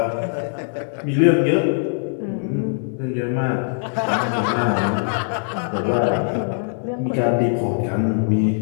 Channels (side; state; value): right; silent; digital silence